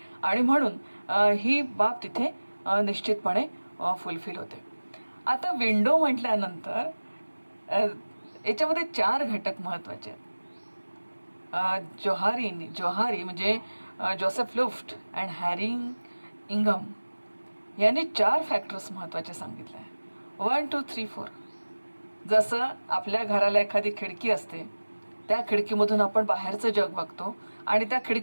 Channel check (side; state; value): both; inverted; correlation -1.00